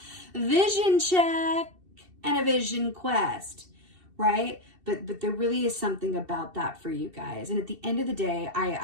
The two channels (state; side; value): late; left; 2.7 ms